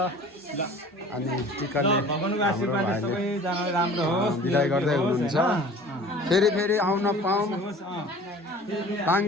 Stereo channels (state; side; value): normal; both; correlation 0.45